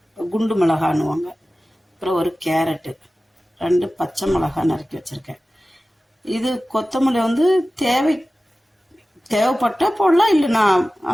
குண்டு மிளகான்னுவாங்க. அப்புறம் ஒரு கேரட்டு, 2 பச்சை மிளகாய் நறுக்கி வச்சுருக்கேன். இது கொத்தமல்லி தேவைப்பட்டால் போடலாம், இல்லைனா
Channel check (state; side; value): normal; both; correlation 0.96